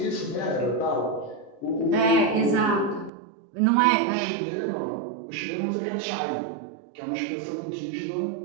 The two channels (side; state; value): left; drops out; at 3.1 s